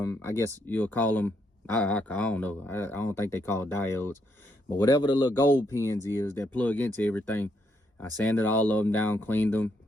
I guess you'll call them, I don't know. I don't think they call diodes. But whatever the little gold pins is that plug into everything, I sanded all of them down, cleaned them,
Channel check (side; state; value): both; normal; correlation 0.76